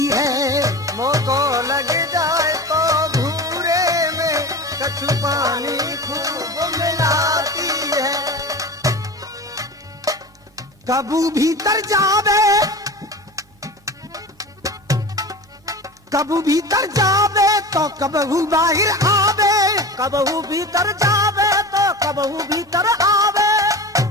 है। मोह को लग जाए तो भूरे में कछु पानी खूब मिलाती है। कबू भीतर जावे, कबू भीतर जावे तो कबहू बाहर आवे। कबहू भीतर जावे तो कबहू भीतर आवे।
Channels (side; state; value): both; normal; correlation 0.32